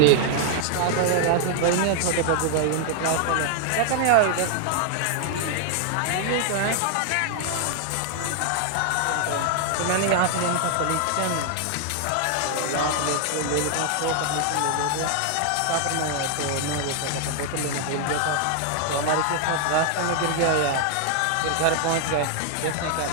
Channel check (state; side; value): different; both; correlation 0.00